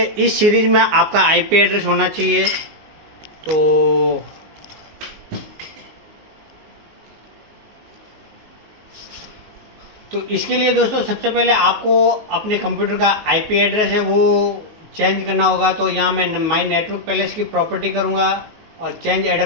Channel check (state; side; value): late; left; 19 ms